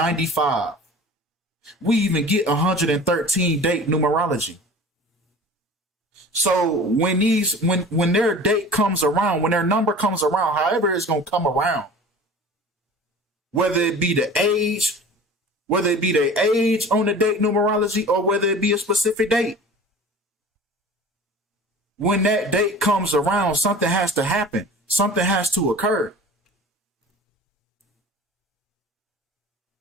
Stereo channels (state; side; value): normal; both; correlation 0.40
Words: We even get 113 date numerology. So when their date comes around, when their number comes around, however it's gonna come around, whether it be the age, whether it be their age on the date numerology, or whether it be a specific date, when that date comes around, something has to happen. Something has to occur.